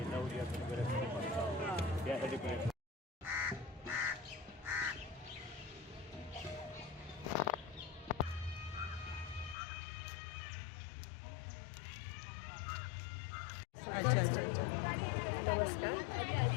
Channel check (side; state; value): right; drops out; at 9.6 s